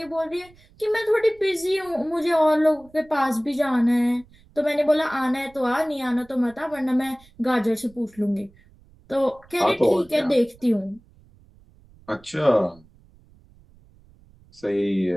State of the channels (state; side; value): noise; right; rumble, 28 dB below the sound